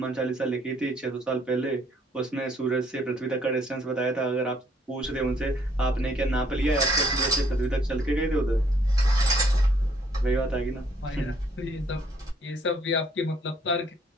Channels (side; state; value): both; normal; correlation 0.65